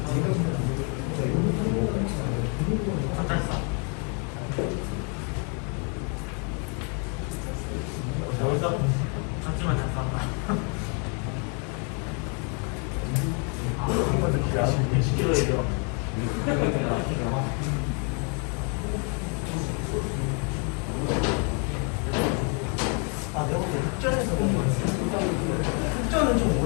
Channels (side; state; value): right; quieter; 37.8 dB